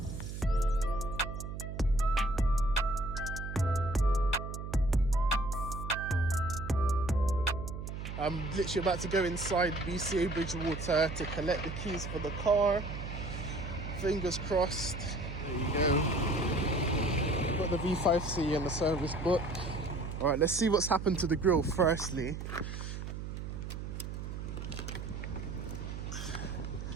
I'm literally about to go inside BCA Bridgewater to collect the keys for the car. Fingers crossed. There you go. Got the V5C and the service book. Alright, let's see what's happened to the grille firstly.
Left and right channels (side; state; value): right; noise; hum, 7 dB below the sound